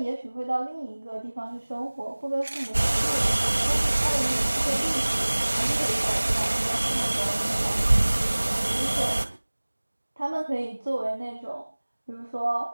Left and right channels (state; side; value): inverted; both; correlation -1.00